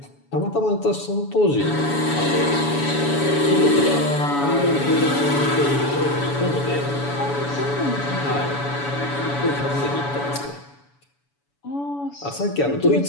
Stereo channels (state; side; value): late; right; 7.0 ms